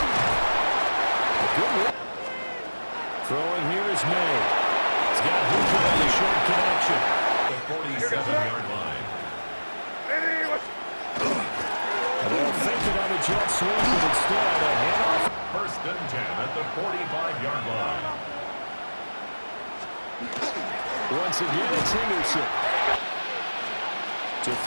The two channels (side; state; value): both; inverted; correlation -1.00